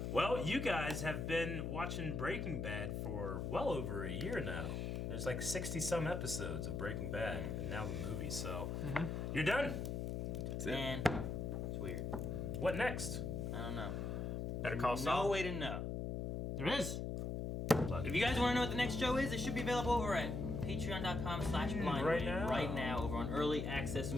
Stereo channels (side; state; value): left; noise; hum, 2 dB below the sound